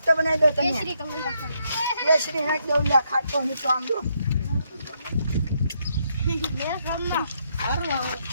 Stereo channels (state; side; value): inverted; both; correlation -0.76